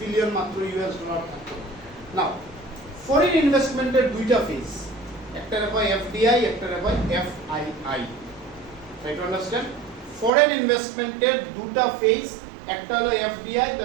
বিলিয়ন মাত্র ইউএস ডলার থাকতো। নাও ফরেন ইনভেস্টমেন্টের দুইটা ফেজ, একটা কয় এফডিআই, একটা কয় FII. Try to understand, foreign investment এর দুটো ফেজ, একটা হলো FDI,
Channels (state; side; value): drops out; left; at 10.3 s